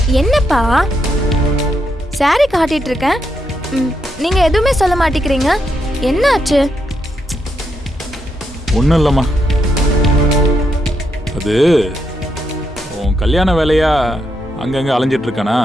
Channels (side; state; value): both; normal; correlation 0.80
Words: என்னப்பா சாரி காட்டிட்டு இருக்கேன், நீங்க எதுவுமே சொல்ல மாட்டேங்கிறீங்க. என்ன ஆச்சு? ஒன்றும் இல்லைம்மா, அது உன் கல்யாண வேலையா அங்கங்கே அலைஞ்சிட்டு இருக்கானா,